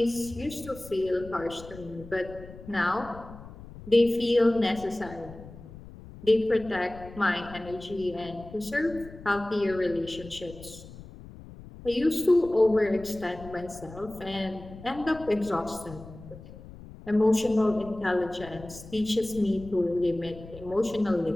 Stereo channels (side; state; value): left; noise; rumble, 16 dB below the sound